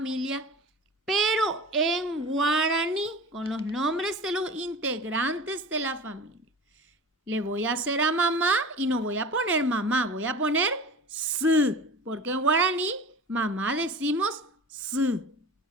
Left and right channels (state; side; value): normal; both; correlation 0.36